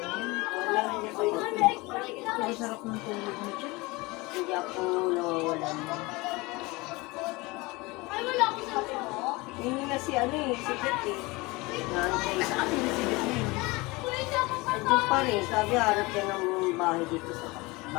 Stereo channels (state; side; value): quieter; right; 23.6 dB